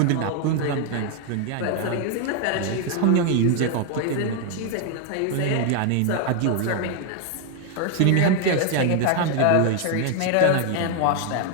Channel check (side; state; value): both; different; correlation 0.00